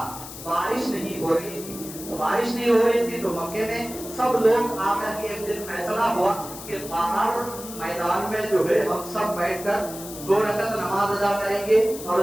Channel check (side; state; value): left; noise; hiss, 12 dB below the sound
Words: बारिश नहीं हो रही थी। तो बारिश नहीं हो रही थी तो मक्के में सब लोग आकर के एक दिन फैसला हुआ कि बाहर मैदान में जो है हम सब बैठकर 2 रकात नमाज अदा करेंगे और